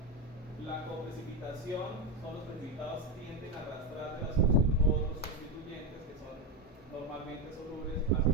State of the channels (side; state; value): both; normal; correlation 0.11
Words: La coprecipitación son los precipitados que tienden a arrastrar de la solución otros constituyentes que son normalmente solubles hacia